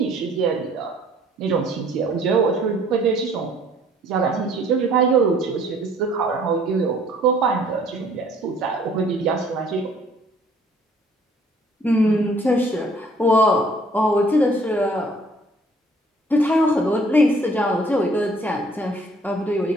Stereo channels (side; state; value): both; normal; correlation 0.58